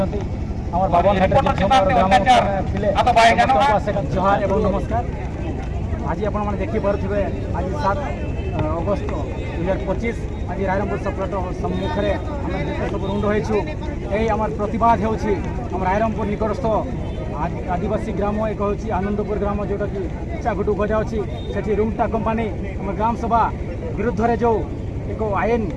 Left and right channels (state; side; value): identical; both; correlation 1.00